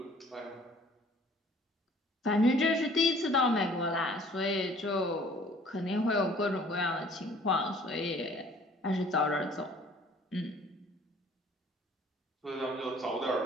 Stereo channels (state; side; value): normal; both; correlation 0.54